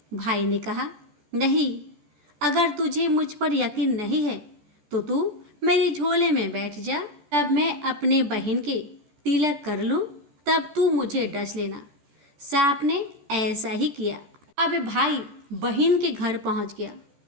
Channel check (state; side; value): late; left; 13 ms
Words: भाई ने कहा, नहीं। अगर तुझे मुझ पर यकीन नहीं है तो तू मेरे झोले में बैठ जा। तब मैं अपने बहन के तिलक कर लूँ, तब तू मुझे डस लेना। सांप ने ऐसा ही किया। अब भाई बहन के घर पहुंच गया।